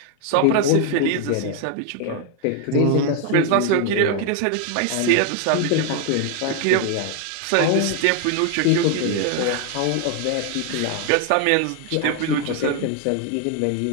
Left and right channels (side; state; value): both; different; correlation 0.01